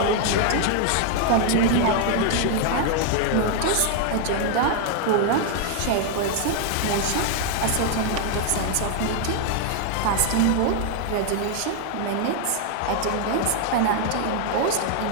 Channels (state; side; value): different; both; correlation 0.00